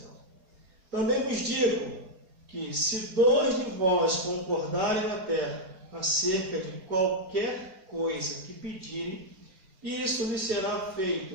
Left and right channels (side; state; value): left; late; 4.8 ms